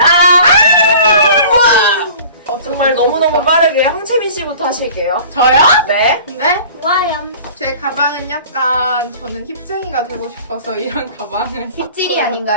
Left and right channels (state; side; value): inverted; both; correlation -0.45